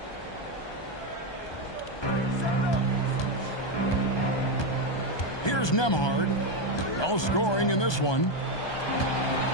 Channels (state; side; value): late; right; 1.2 ms